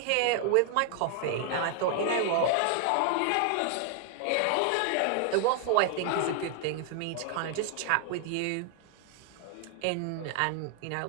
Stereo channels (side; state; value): both; different; correlation 0.00